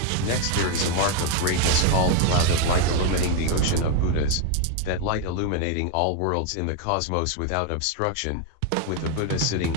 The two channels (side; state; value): both; different; correlation 0.01